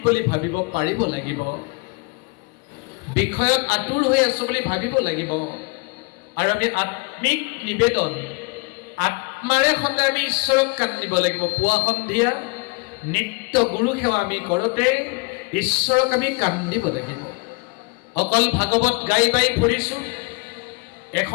বুলি ভাবিব পাৰিব লাগিব বিষয়ত আতুৰ হৈ আছো বুলি ভাবিব লাগিব আৰু আমি আত্মিক নিবেদন আত্মাৰে সদায় আমি ঈশ্বৰক কান্দিব লাগিব পুৱা সন্ধিয়া নিত্য গুৰু সেৱা আমি কৰোঁতে ঈশ্বৰক আমি কান্দিব লাগিব। অকল ভাগৱত গাই বাই ফুৰিছোঁ,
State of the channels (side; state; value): right; quieter; 29.6 dB